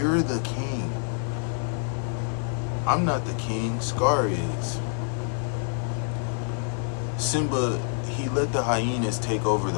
the king. I'm not the king, Scar is. Simba, he let the hyenas take over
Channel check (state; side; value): silent; right; 60 dB below the other